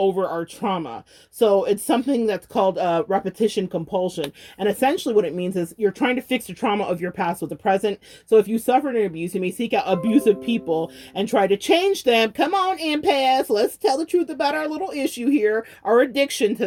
our trauma. So it's something that's called repetition compulsion. And essentially what it means is you're trying to fix the trauma of your past with the present. So if you suffered an abuse, you may seek out abusive people and try to change them. Come on, empaths, let's tell the truth about our little issue here, our addiction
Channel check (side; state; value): both; identical; correlation 1.00